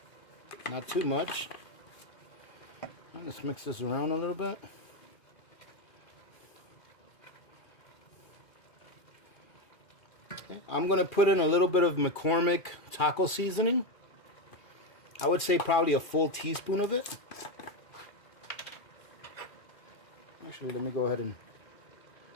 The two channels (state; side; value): late; right; 2.4 ms